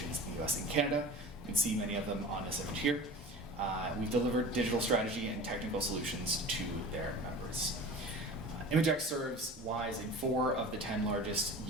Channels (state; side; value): normal; both; correlation 0.37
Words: in the US and Canada. You can see many of them on this image here. We've delivered digital strategy and technical solutions to their members. ImageX serves Ys in 4 of the 10 largest